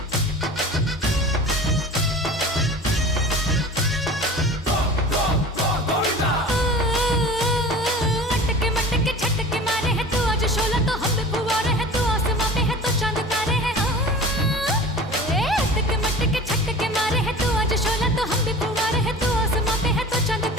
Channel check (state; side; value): normal; both; correlation 0.39